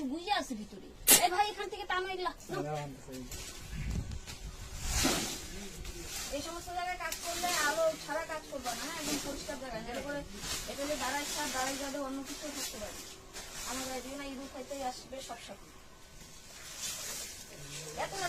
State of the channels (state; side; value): identical; both; correlation 1.00